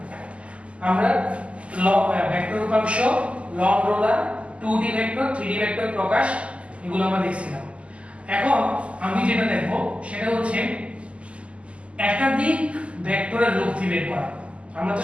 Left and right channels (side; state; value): left; late; 0.058 ms